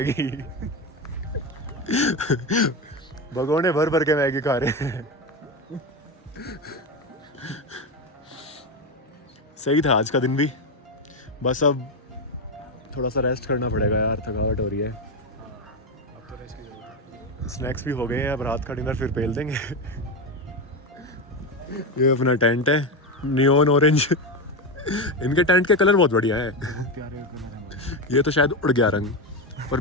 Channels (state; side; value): normal; both; correlation 0.15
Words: भगोने भर भर के मैगी खा रहे हैं। सही था आज का दिन भी, बस अब थोड़ा सा रेस्ट करना पड़ेगा यार, थकावट हो रही है। अब तो रेस्ट की जरूरत है। स्नैक्स भी हो गए हैं, अब रात का डिनर फिर पेल देंगे। ये अपना टेंट है नियॉन ऑरेंज। इनके टेंट के कलर बहुत बढ़िया है। प्यारे कलर हैं। ये तो शायद उड़ गया रंग, पर